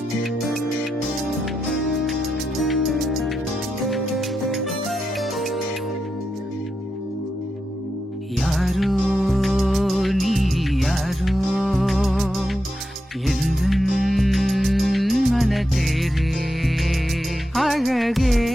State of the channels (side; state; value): both; normal; correlation 0.87